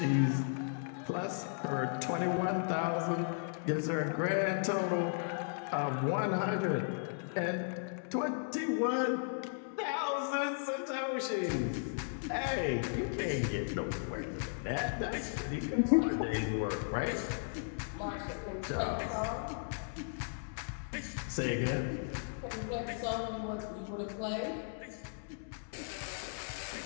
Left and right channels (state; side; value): silent; right; digital silence